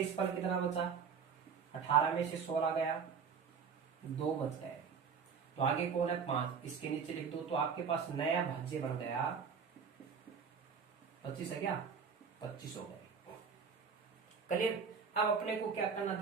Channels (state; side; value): quieter; left; 6.3 dB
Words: फल कितना बचा 18 में से 16 गया 2 बच गए, तो आगे कौन है 5, इसके नीचे लिख दो। तो आपके पास नया भाज्य बन गया 25 है क्या 25 हो गए, क्लियर। अब अपने को क्या करना